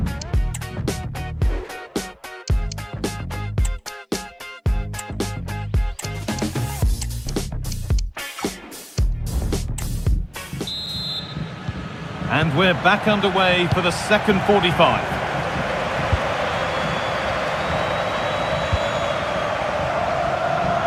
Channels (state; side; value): identical; both; correlation 1.00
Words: And we're back underway for the second 45.